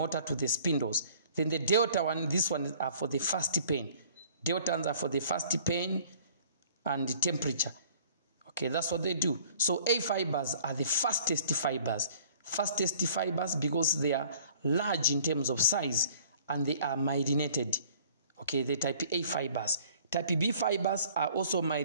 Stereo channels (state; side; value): inverted; both; correlation -0.53